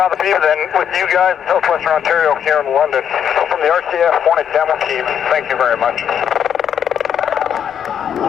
be than with you guys in Southwestern Ontario here in London. So from the RCAF Hornet demo team, thank you very much.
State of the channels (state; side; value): quieter; right; 8.6 dB